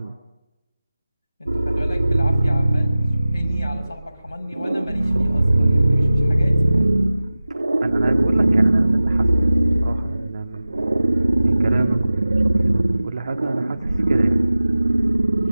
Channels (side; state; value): both; inverted; correlation -0.97